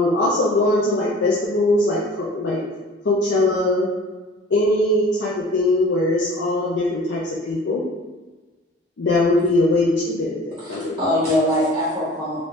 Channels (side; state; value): both; normal; correlation 0.45